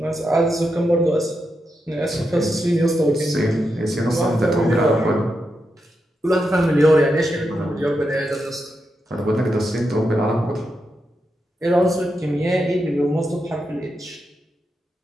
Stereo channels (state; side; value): normal; both; correlation 0.86